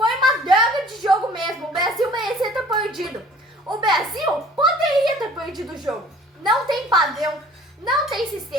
uma droga de jogo mesmo. O Brasil merecia ter perdido. O Brasil poderia ter perdido o jogo. Não tem padrão, não tem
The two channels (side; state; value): both; normal; correlation 0.51